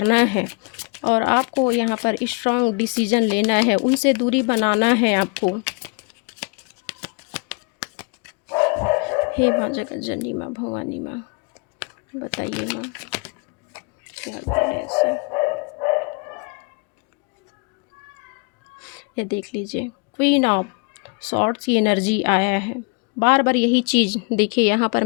है और आपको यहाँ पर स्ट्रॉन्ग डिसीजन लेना है, उनसे दूरी बनाना है आपको। हे माँ जगत जननी माँ भवानी माँ, बताइए माँ क्या करें ऐसे। ये देख लीजिए, क्वीन ऑफ सॉर्ड्स की एनर्जी आया है। बार बार यही चीज़ देखिए, यहाँ पर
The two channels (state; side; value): quieter; right; 32.0 dB